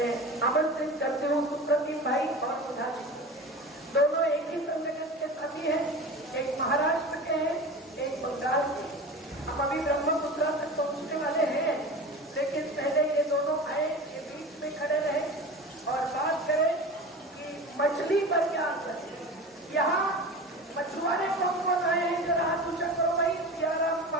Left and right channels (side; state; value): both; normal; correlation 0.32